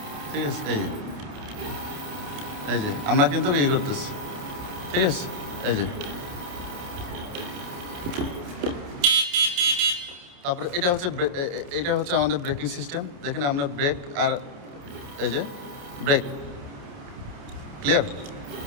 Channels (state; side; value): late; left; 29 ms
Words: ঠিক আছে। এই যে আমরা কিন্তু এই করতেছি, ঠিক আছে। তারপরে এটা হচ্ছে আমাদের ব্রেকিং সিস্টেম। দেখেন আমরা ব্রেক আর এই যে ব্রেক ক্লিয়ার,